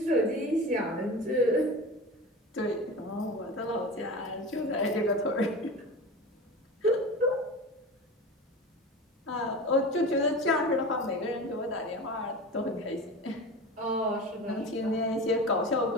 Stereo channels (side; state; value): both; normal; correlation 0.31